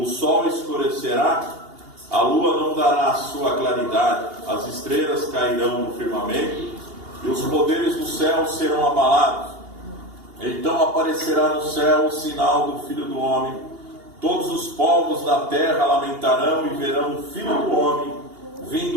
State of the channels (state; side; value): late; left; 2.8 ms